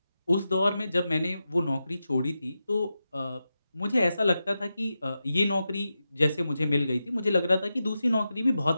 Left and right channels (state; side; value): inverted; both; correlation -0.90